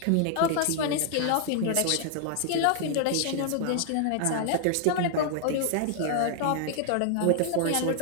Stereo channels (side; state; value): both; different; correlation 0.00